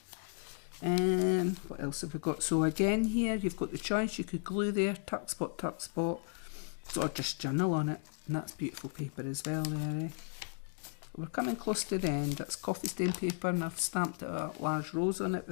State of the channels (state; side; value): silent; right; 54 dB below the other